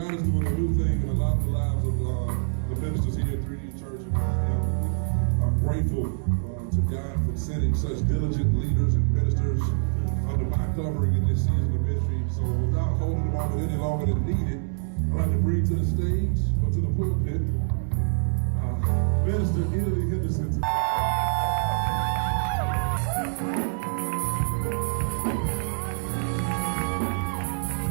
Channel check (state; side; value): silent; left; digital silence